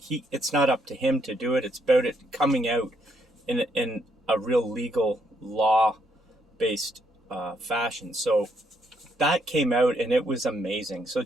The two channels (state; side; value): normal; both; correlation 0.74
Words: not up to him to do it. It's about it coming out in a real legal law-based fashion. So that came out, and it was amazing. So